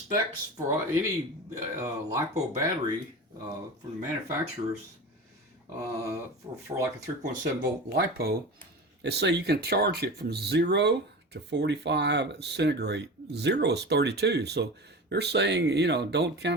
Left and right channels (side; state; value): both; normal; correlation 0.30